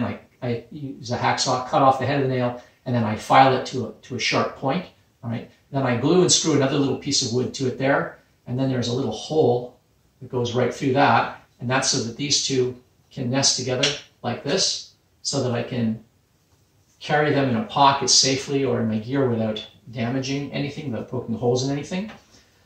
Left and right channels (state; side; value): identical; both; correlation 1.00